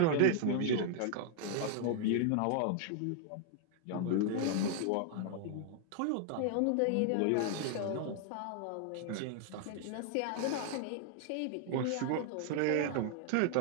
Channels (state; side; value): different; both; correlation 0.00